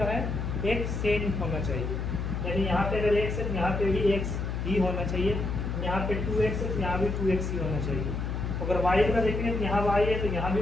है, एक सेम होना चाहिए। यानी यहाँ पे अगर x है तो यहाँ पे भी x ही होना चाहिए, यहाँ पे 2x है तो यहाँ भी 2x ही होना चाहिए। अगर y का देखेंगे तो यहाँ y है तो यहाँ भी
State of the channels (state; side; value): noise; left; hum, 2 dB below the sound